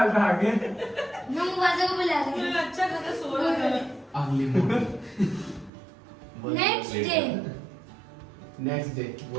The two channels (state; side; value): drops out; left; at 5.7 s